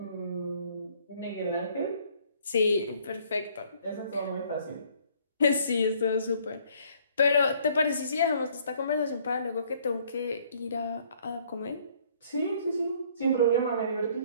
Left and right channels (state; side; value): inverted; both; correlation -0.62